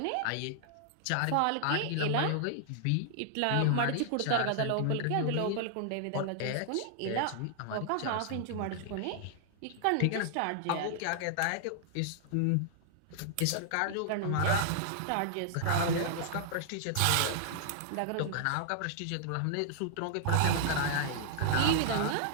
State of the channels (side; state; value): both; different; correlation -0.01